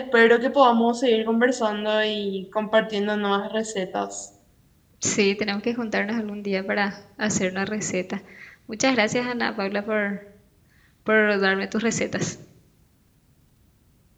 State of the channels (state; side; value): identical; both; correlation 1.00